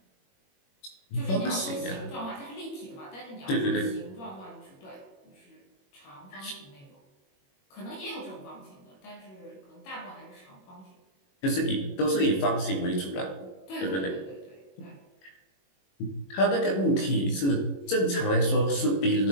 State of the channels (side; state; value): right; late; 21 ms